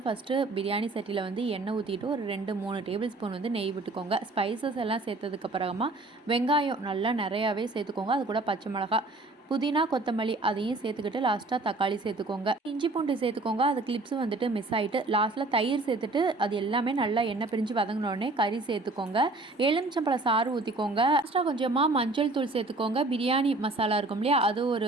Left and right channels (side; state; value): left; quieter; 3.1 dB